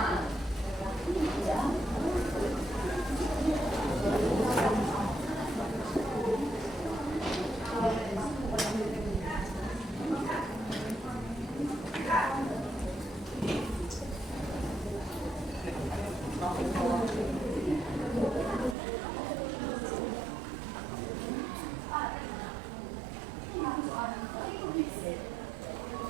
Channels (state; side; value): drops out; left; at 18.8 s